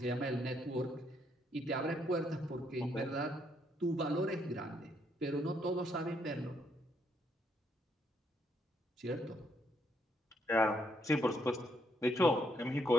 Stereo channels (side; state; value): both; normal; correlation 0.73